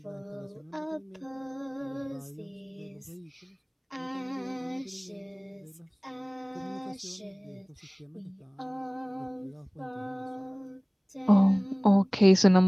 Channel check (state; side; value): identical; both; correlation 1.00